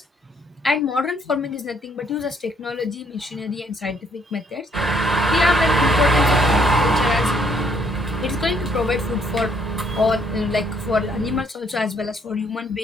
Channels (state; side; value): normal; both; correlation 0.67